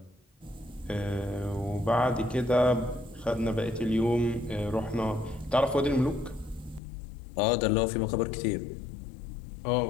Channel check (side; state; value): right; drops out; at 6.8 s